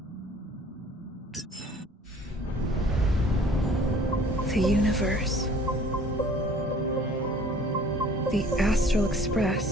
The universe. The Astral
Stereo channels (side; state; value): both; normal; correlation 0.52